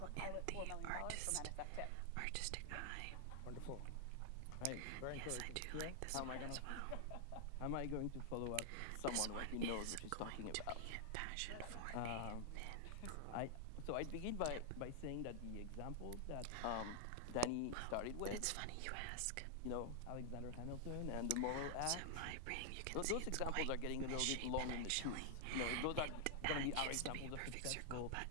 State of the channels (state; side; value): different; both; correlation 0.00